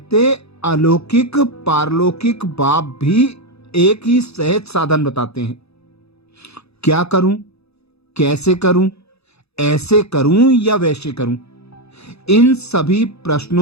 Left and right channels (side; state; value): right; late; 0.79 ms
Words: अलौकिक पारलौकिक बाप भी एक ही सहज साधन बताते हैं। क्या करूं, कैसे करूं, ऐसे करूं या वैसे करूं, इन सभी